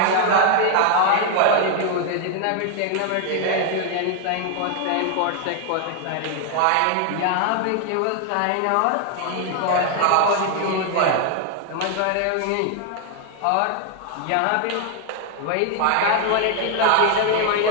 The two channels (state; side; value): different; both; correlation 0.00